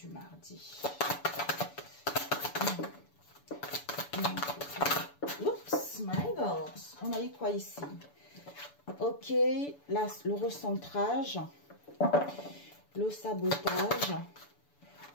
mardi. Oups, my God. On a eu quoi ici? Ok, là, le recentrage, le sabotage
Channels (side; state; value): right; late; 6.9 ms